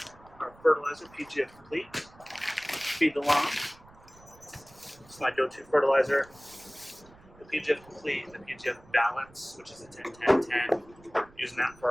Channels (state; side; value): noise; right; rumble, 25 dB below the sound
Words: our fertilizer, PGF Complete. Feed the lawn. It's my go-to fertilizer. The PGF Complete and the PGF Balance, which is a 10-10-10. Using that